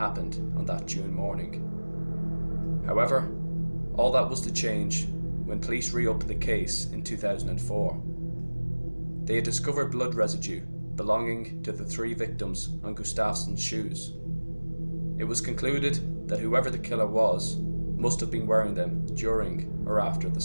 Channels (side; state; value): both; inverted; correlation -1.00